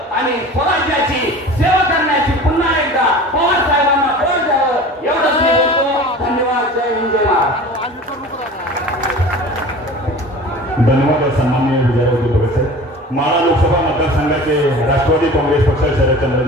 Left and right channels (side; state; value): both; normal; correlation 0.39